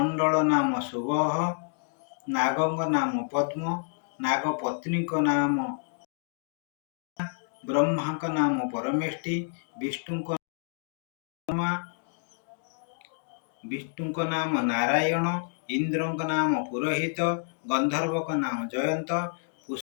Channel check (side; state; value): right; silent; digital silence